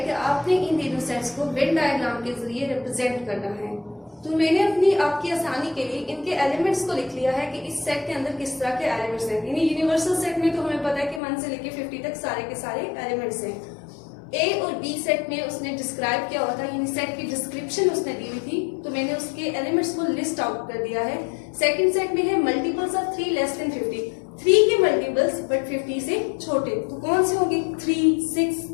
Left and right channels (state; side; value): drops out; right; at 11.2 s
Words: कि आपने इन तीनों सेट्स को वेन डायग्राम के जरिए रिप्रेजेंट करना है। तो मैंने आपकी आसानी के लिए इनके एलिमेंट्स को लिख लिया है कि इस सेट के अंदर किस तरह के एलिमेंट्स हैं। यानी यूनिवर्सल सेट में तो हमें पता है कि 1 से लेके 50 तक सारे के सारे एलिमेंट्स हैं। ए और बी सेट में उसने डिस्क्राइब किया हुआ था, यानी सेट की डिस्क्रिप्शन उसने दी हुई थी, तो मैंने उसके एलिमेंट्स को लिस्ट आउट कर दिया है। सेकंड सेट में है मल्टीपल्स ऑफ 3 लेस देन 50, 3 के मल्टीपल्स बट 50 से छोटे, तो कौन से होंगे? 3, 6,